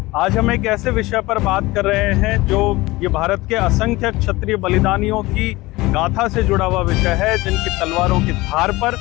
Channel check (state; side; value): quieter; right; 20.4 dB